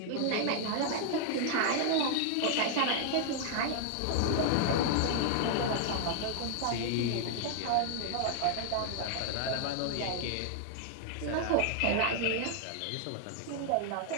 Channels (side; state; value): both; different; correlation 0.00